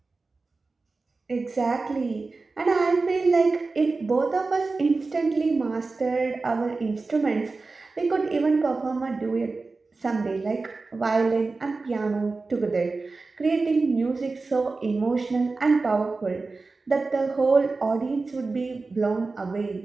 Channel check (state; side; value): quieter; left; 3.8 dB